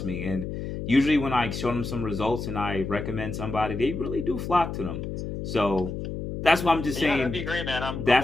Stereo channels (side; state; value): left; noise; hum, 6 dB below the sound